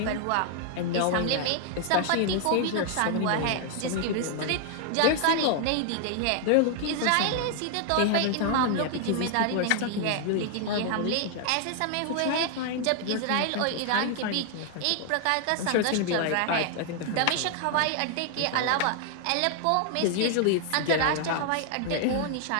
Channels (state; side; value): different; both; correlation 0.00